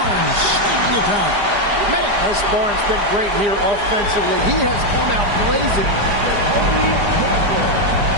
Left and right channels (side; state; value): left; late; 4.9 ms